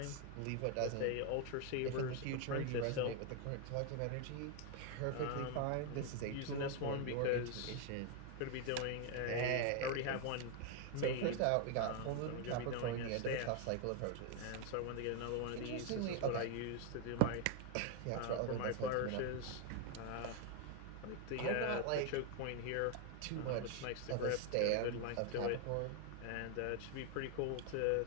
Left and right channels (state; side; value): different; both; correlation 0.00